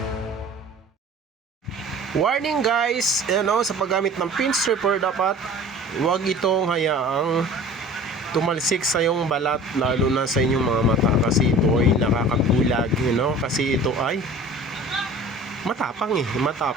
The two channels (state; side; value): normal; both; correlation 0.43